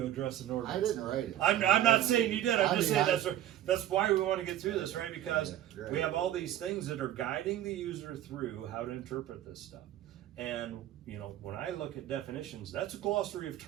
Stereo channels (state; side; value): quieter; left; 12.5 dB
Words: address an ordinance. I didn't write it. I'm not saying you did, I'm I just mean, saying that's why we wanna get through this, right? Because Yeah, right. we have all these things that are guiding the user through how to interpret this stuff. And, you know, when I look at definitions, that's a glossary of